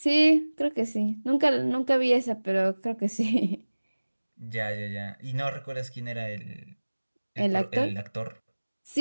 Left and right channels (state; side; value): inverted; both; correlation -1.00